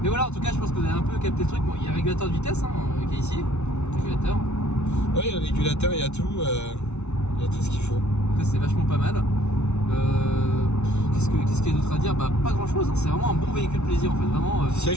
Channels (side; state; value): right; late; 0.81 ms